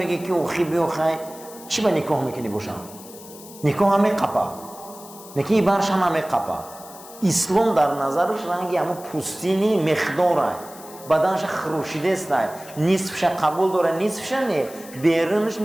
که اوخی بیوخی چی به نکاح میکنی باشم؟ نکاح همه قپا، نکاح برش همه قپا. اسلام در نظرش رنگی همو پوستینی مقداره، بدنش خروشیده است، نصفش قبول داره نصفش نه، بیرونش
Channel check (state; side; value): noise; left; hiss, 18 dB below the sound